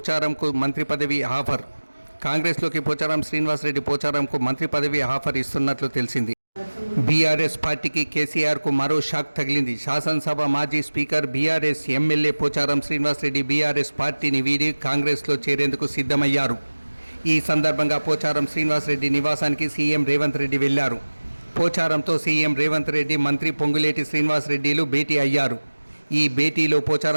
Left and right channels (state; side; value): inverted; both; correlation -1.00